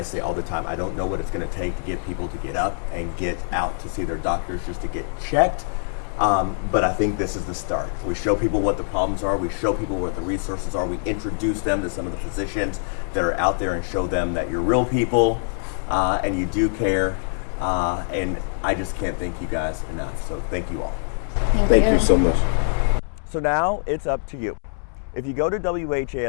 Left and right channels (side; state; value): right; silent; 63 dB below the other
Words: say all the time, I don't know what it's going to take to get people to get up and get out to see their doctors just to get checked. But I think this is the start. We show people what the problems are. We show people what the resources are. We introduce them to some of the physicians that are out there and show them that you're real people and you do care. And I just can't thank you guys enough. So thank you all. Thank you so much. So now it's up to you. If you go to